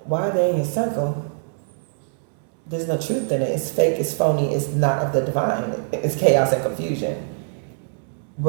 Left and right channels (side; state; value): left; silent; digital silence